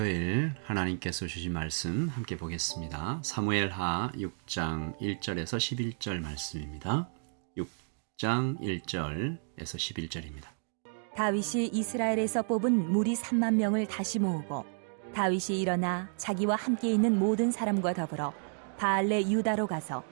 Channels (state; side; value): silent; left; 57 dB below the other